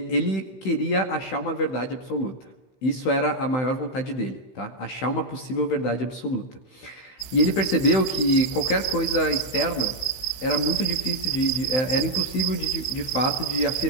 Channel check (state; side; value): late; right; 15 ms